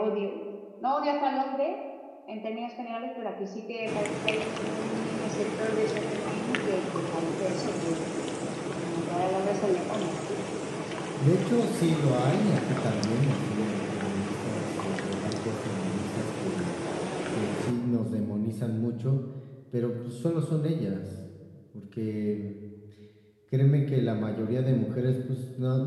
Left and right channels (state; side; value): identical; both; correlation 1.00